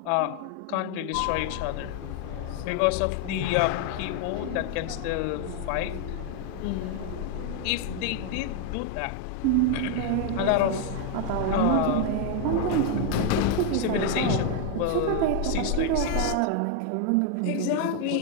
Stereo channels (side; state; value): both; different; correlation 0.01